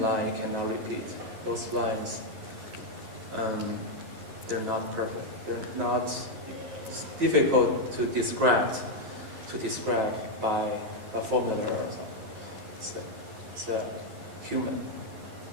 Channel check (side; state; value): left; late; 11 ms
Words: cannot repeat. Those lines, they're not perfect. They're not. It's difficult to describe by a formula or something. It's a human.